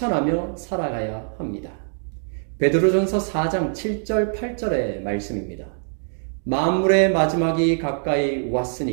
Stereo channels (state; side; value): silent; left; digital silence